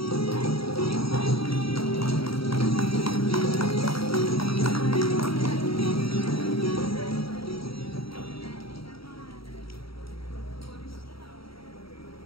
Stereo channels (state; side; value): late; right; 0.75 ms